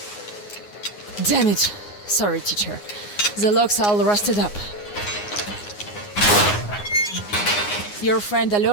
Damn it. Sorry, teacher. The logs all rusted up. Your friend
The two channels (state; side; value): late; right; 9.6 ms